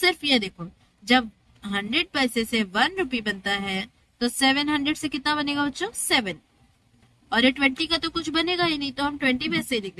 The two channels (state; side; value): identical; both; correlation 1.00